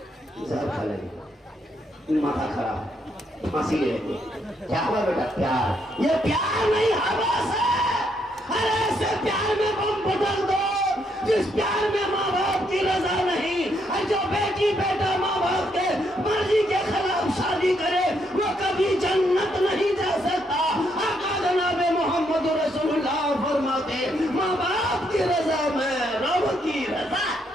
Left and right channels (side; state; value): both; normal; correlation 0.75